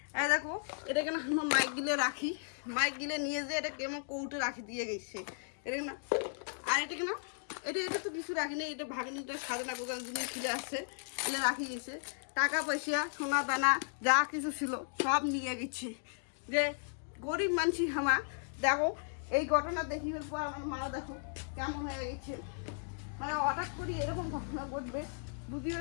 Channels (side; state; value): right; silent; digital silence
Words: এই দেখো, এটা কেন আমার মাইক গিলে রাখি, মাইক গিলে নিয়ে যে এটা কেমন কৌটে রাখি দিয়ে গেছে। এটা না, আর এটা কেন, এটা তো কিছু রাখিনি, এটা ভাগিনিটা সাজানা গোজান জিনিস ছিল আসছে, এলে রাখি গেছে। টাকা পয়সা সোনা দানা যা কিছু ছিল সব নিয়ে গেছে। যে গরিব মানুষ আমার, দেখো এই ঘটনা দেখিবার পর আমার মা দেখো কেমন হয়ে গেছে। মানে হঠাৎ করে এরকম ঘটনা ঘটবে